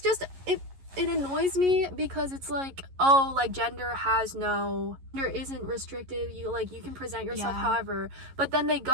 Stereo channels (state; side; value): late; left; 11 ms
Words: it annoys me because it's like, oh, like gender isn't restrictive. You can present yourself however, but then they